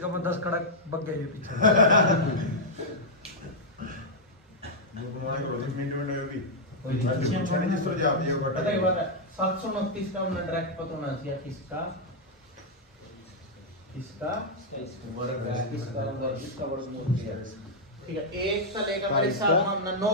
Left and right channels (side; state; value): both; normal; correlation -0.05